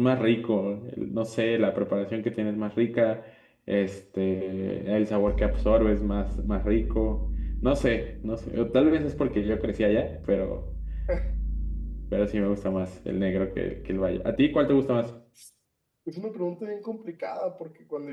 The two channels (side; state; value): both; identical; correlation 1.00